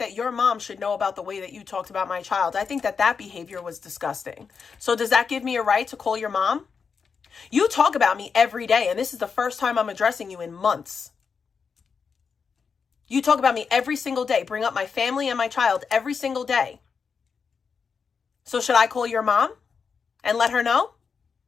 your mom should know about the way that you talked about my child. I think that behavior was disgusting. So does that give me a right to call your mom? You talk about me every day, and this is the first time I'm addressing you in months. You talk about me every single day, bring up my family and my child every single day. So should I call your mom and let her know?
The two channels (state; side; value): quieter; right; 5.8 dB